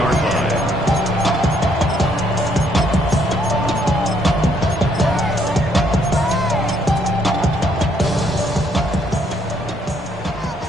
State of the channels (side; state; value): both; normal; correlation 0.69